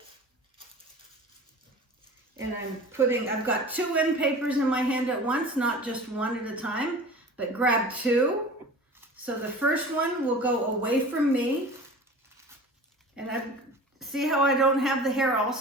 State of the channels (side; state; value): both; normal; correlation 0.39